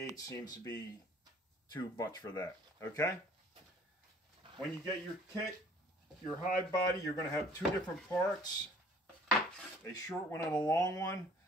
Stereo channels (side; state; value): both; normal; correlation 0.54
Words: seems to be too much for that. Okay, when you get your kit, your hive body, you're going to have 2 different parts, a short one and a long one.